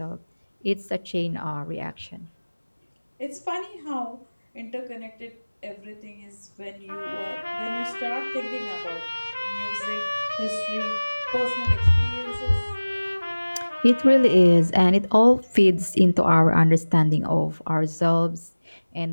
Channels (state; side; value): inverted; both; correlation -1.00